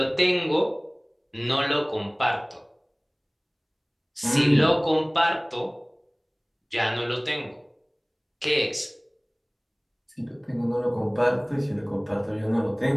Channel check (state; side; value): identical; both; correlation 1.00